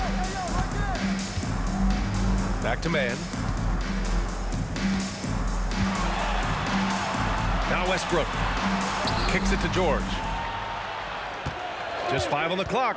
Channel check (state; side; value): identical; both; correlation 1.00